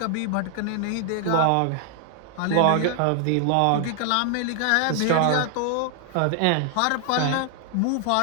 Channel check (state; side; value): different; both; correlation 0.00